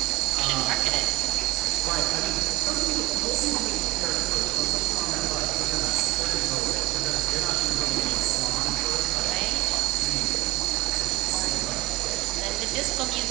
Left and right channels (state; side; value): quieter; left; 19.8 dB